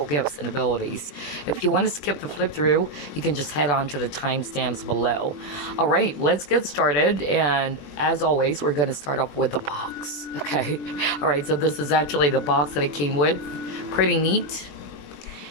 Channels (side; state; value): right; late; 21 ms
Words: gifts and abilities. If you want to skip the flip through, you can just head on to the timestamps below. All right, let's get started. And as always, we're going to start off with the box. Okay. All right, so this is actually the box that it came with. Pretty neat.